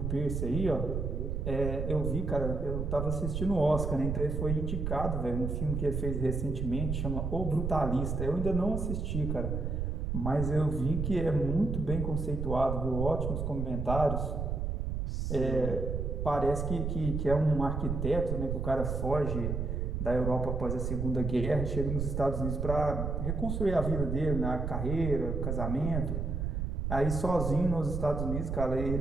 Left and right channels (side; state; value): right; noise; rumble, 2 dB below the sound